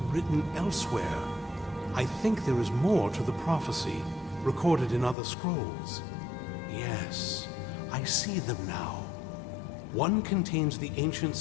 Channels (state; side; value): drops out; right; at 5.2 s